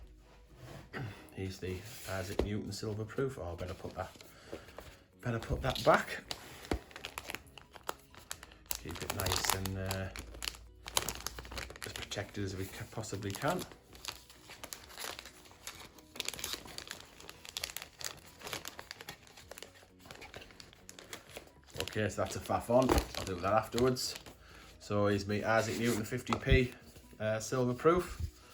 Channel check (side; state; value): both; identical; correlation 1.00